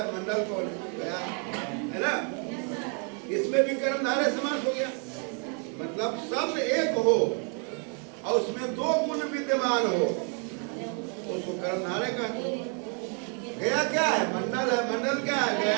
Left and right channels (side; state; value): left; quieter; 39.5 dB